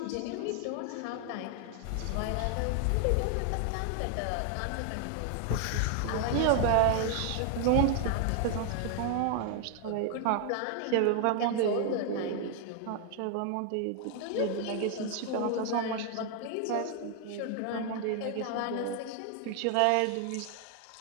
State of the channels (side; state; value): both; different; correlation 0.00